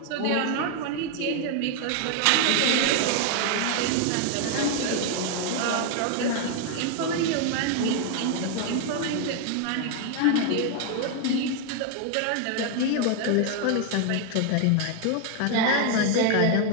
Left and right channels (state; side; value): different; both; correlation 0.00